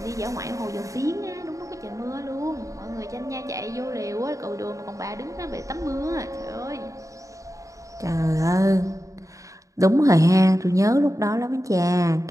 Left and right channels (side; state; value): left; late; 0.16 ms